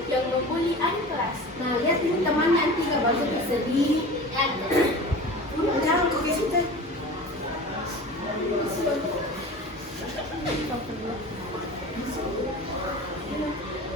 yang membuli adik kelas. Nah, lihat ini teman nanti nggak bagus sedih. Jangan kau ke situ.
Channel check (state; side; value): normal; both; correlation 0.36